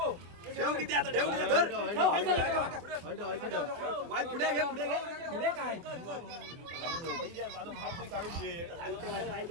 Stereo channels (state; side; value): late; left; 24 ms